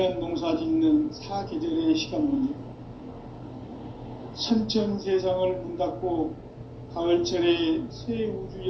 농사 짓는 사계절의 시간문제. 선천 세상을 문 닫고 가을철에 새 우주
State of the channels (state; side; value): identical; both; correlation 1.00